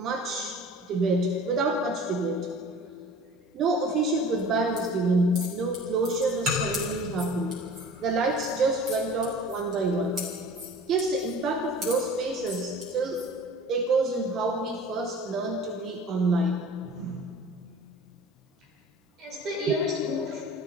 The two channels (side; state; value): both; normal; correlation 0.43